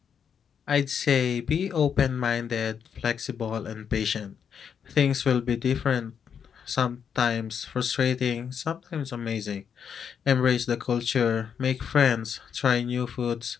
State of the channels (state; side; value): quieter; right; 7.5 dB